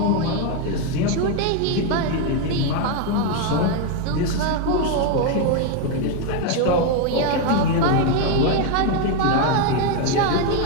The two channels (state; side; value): different; both; correlation 0.01